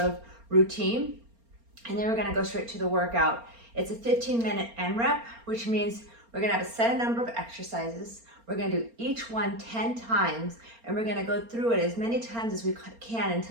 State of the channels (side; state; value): left; late; 4.3 ms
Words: routine. And then we're gonna go straight to the workout. It's a 15-minute AMRAP, which means we're gonna have a set number of exercises. We're gonna do each one 10 times, and we're gonna go through it as many times as we can